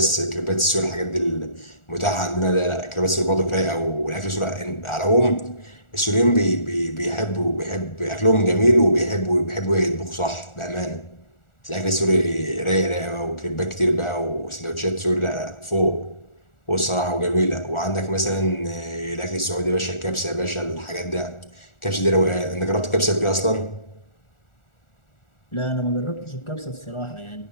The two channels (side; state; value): right; late; 1.4 ms